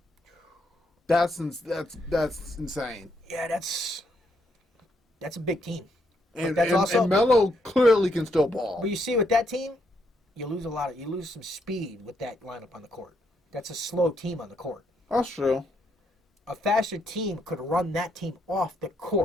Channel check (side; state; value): both; normal; correlation 0.75